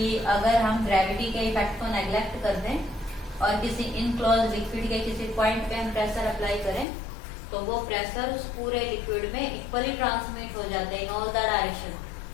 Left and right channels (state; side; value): drops out; right; at 6.9 s